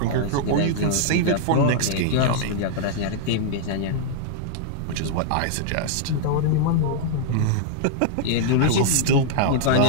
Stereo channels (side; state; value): both; different; correlation -0.01